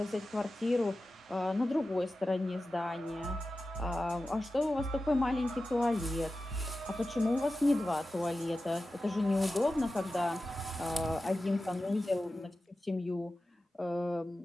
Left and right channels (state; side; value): normal; both; correlation 0.94